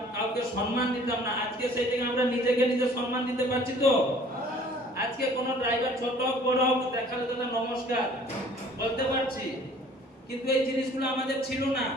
কাউকে সম্মান দিতাম না, আজকে সেই থেকে আমরা নিজেকে নিজে সম্মান দিতে পারছি তো। আজকে কোন ড্রাইভার ছোট হোক বড় হোক দেখালে তো নমস্কার বলতে পারছি, কিন্তু এই জিনিসগুলো আমাদের ছিল না,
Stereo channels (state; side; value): normal; both; correlation 0.52